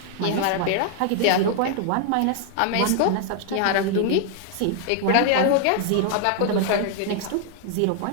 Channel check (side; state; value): both; different; correlation 0.00